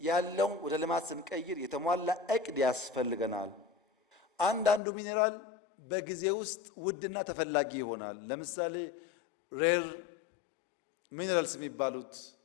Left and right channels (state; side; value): drops out; right; at 4.8 s